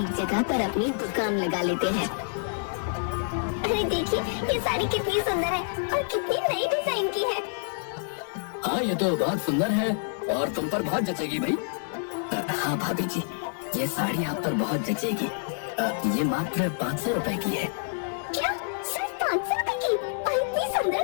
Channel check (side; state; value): right; silent; 56 dB below the other